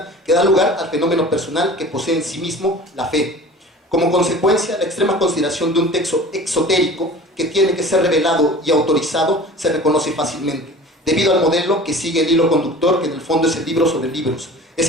que da lugar al fenómeno personal que posee en sí mismo la fe. Como consecuencia, la extrema consideración de un texto exotérico que tiene que ser revelado y autorizado se reconoce fácilmente, debido al modelo que sigue el hilo conductor, que en el fondo es el libro sobre libros. Es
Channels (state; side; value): normal; both; correlation 0.41